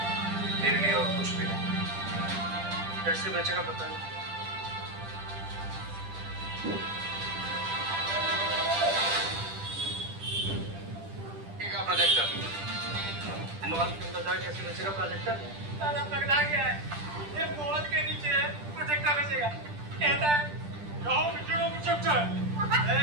मेरे लिए और कुछ भी नहीं। कैसे बेचेगा पता नहीं। प्रोजेक्टर मॉल के अंदर जाके कैसे बेचेगा प्रोजेक्टर? दादा पगला गया है, ये मॉल के नीचे प्रोजेक्टर बेचेगा, कहता है जाओ बेचेगा प्रोजेक्टर।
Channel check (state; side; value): late; left; 10 ms